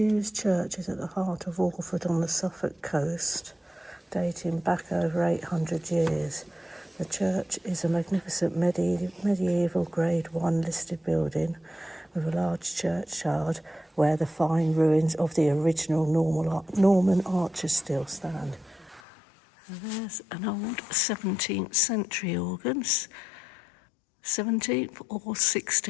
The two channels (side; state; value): right; drops out; at 19.0 s